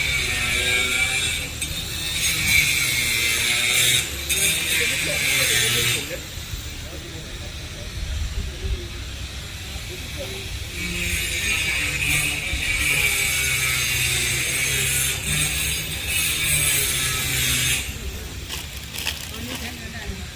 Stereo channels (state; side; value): identical; both; correlation 1.00